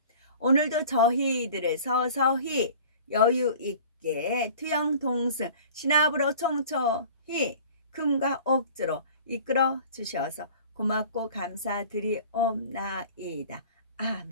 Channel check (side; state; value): both; inverted; correlation -0.44